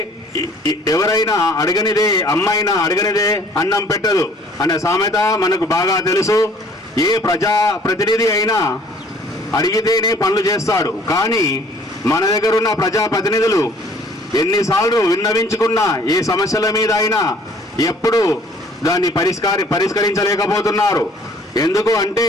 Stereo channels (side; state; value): both; normal; correlation 0.56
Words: ఎవరైనా అడగనిదే అమ్మైనా అడగనిదే అన్నం పెట్టదు అనే సామెత మనకు బాగా తెలుసు. ఏ ప్రజాప్రతినిధి అయినా అడిగితేనే పనులు చేస్తాడు. కానీ మన దగ్గర ఉన్న ప్రజాప్రతినిధులు ఎన్నిసార్లు విన్నవించుకున్నా ఏ సమస్యల మీద అయినా ఎప్పుడు దాన్ని పరిష్కరించలేకపోతున్నారు. ఎందుకు